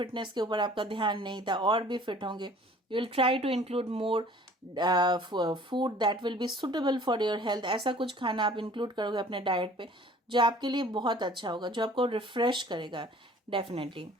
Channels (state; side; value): normal; both; correlation 0.51